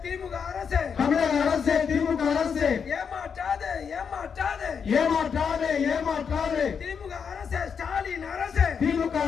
திமுக அரசு, தமிழக அரசு, திமுக அரசு, ஏமாற்றாது, ஏமாற்றாது, ஏமாற்றாது, ஏமாற்றாது. திமுக அரசு, ஸ்டாலின் அரசு, திமுக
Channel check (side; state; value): right; quieter; 6.6 dB